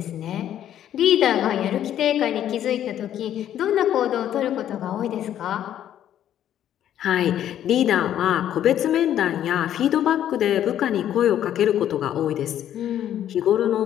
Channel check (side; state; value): right; quieter; 11.0 dB